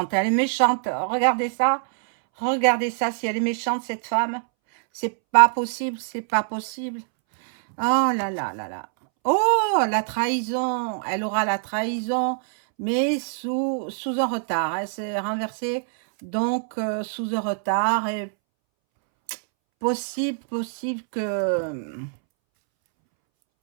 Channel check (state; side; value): silent; left; 63 dB below the other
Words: Elle est méchante. Regardez ça. Regardez ça. Si elle est méchante, cette femme. C'est pas possible. C'est pas possible. Oh là là là là. Oh, la trahison. Elle aura la trahison, mais sous un retard. Elle s'est renversée, donc sous un retard. Et possible que